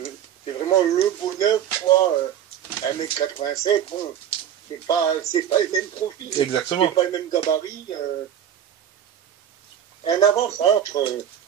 bonheur, quoi. 1m87, bon, c'est pas le même profil. Exactement. C'est pas le même gabarit. Un avant-centre,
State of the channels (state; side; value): quieter; left; 9.7 dB